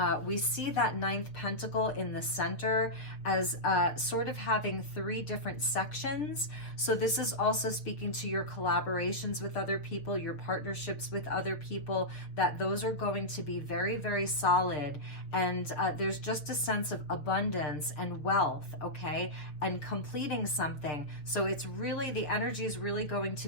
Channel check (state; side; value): late; right; 6.6 ms